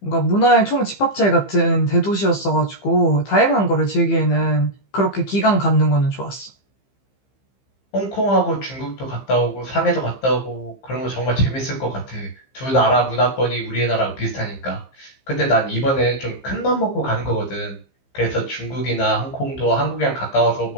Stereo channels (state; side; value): late; right; 15 ms